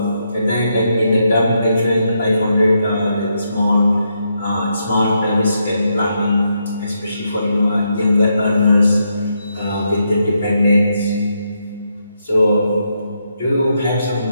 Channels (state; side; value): inverted; both; correlation -0.80